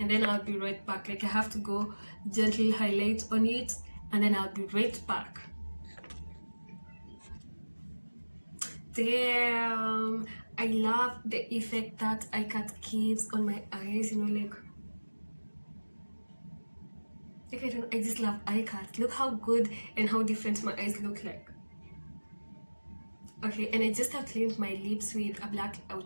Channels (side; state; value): both; inverted; correlation -1.00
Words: and then I'll be right back. Like I have to go gently highlight on it and then I'll be right back. Damn, I love the effect that eye cut gives on my eyes, you know, like I just love eye cut. Look how good and how different my eyes look like. Okay, and I just have cleaned my lips with a black